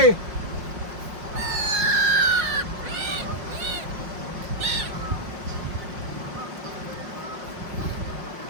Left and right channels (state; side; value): late; left; 5.6 ms